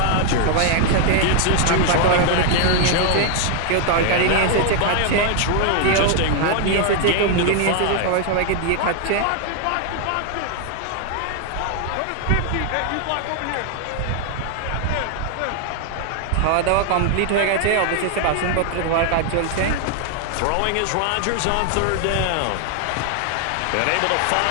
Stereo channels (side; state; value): both; different; correlation 0.00